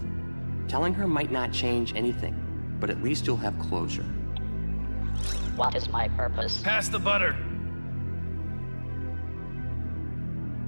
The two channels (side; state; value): both; inverted; correlation -1.00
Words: Telling her might not change anything, but at least you'll have closure. What is my purpose? Pass the butter.